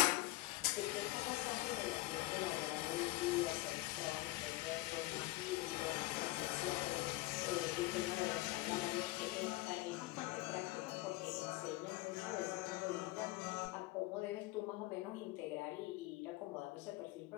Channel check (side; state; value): right; quieter; 19.4 dB